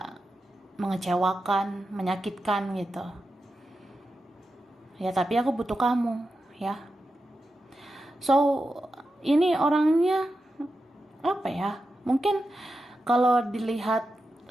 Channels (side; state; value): both; normal; correlation 0.90